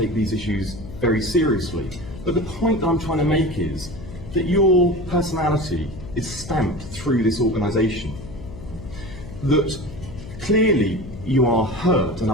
these issues very seriously. But the point that I'm trying to make is that your personality is stamped through this organisation. That clearly you are hurt and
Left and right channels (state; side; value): noise; left; hum, 13 dB below the sound